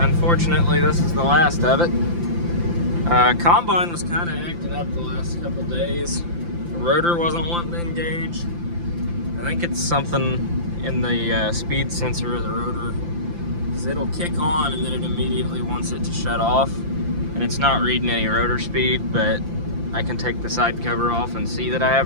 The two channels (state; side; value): late; left; 5.9 ms